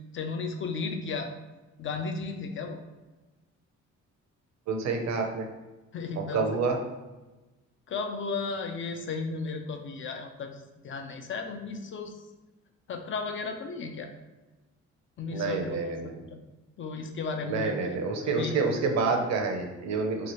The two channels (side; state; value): both; normal; correlation 0.13